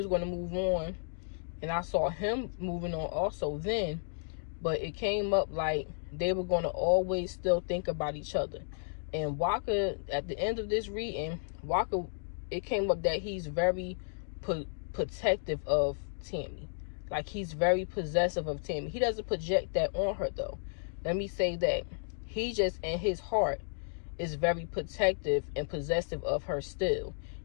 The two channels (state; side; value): silent; right; digital silence